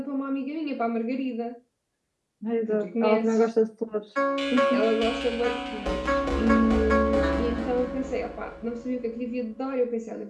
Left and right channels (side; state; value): both; identical; correlation 1.00